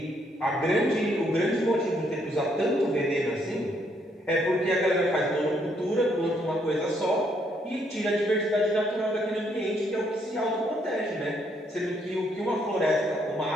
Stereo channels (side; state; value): both; normal; correlation 0.71